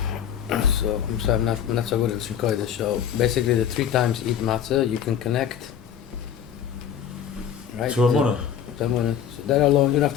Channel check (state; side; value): quieter; right; 8.8 dB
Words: So I'm sorry, I'm not so good at Shikoida. So basically, the 3 times eat matzah, you can connect. Right? To a munah. So that alone, you don't have